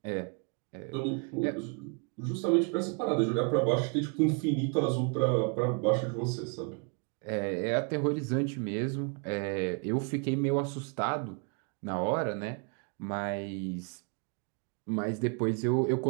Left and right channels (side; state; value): left; quieter; 36.8 dB